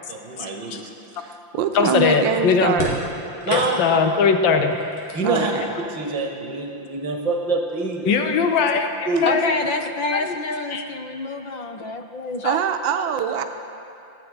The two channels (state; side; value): late; right; 5.8 ms